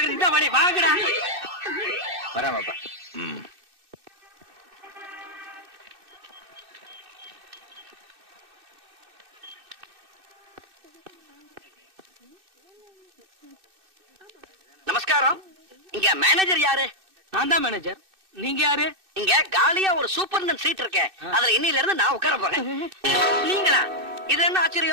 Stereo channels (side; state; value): left; late; 2.6 ms